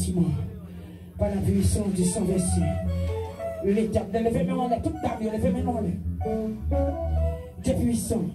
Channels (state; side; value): identical; both; correlation 1.00